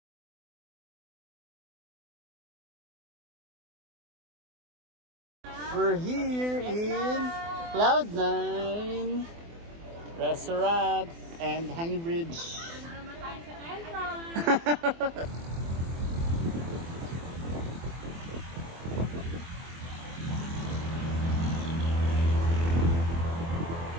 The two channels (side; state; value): left; late; 24 ms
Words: We're here in Cloud9 Restaurant and Hanging Bridge.